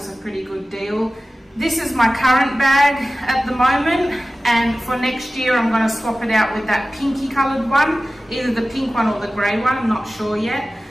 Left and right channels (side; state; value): both; normal; correlation 0.96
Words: a pretty good deal. This is my current bag at the moment, and for next year I'm going to swap it out with that pinky coloured one, either the pink one or the grey one, I'm not sure yet.